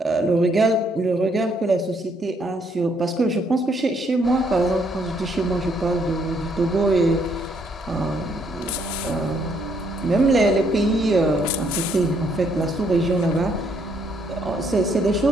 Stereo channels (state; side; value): normal; both; correlation 0.70